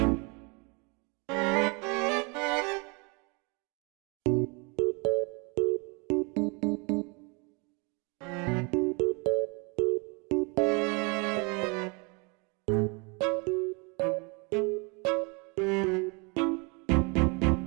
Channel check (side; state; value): left; quieter; 31.1 dB